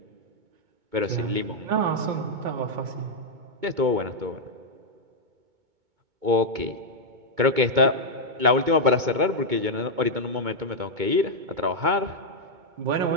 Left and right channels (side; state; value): left; late; 2.2 ms